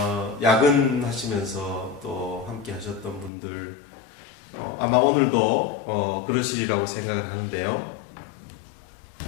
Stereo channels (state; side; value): drops out; right; at 3.3 s